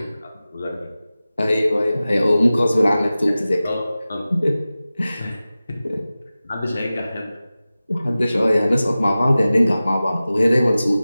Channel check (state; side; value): inverted; both; correlation -0.96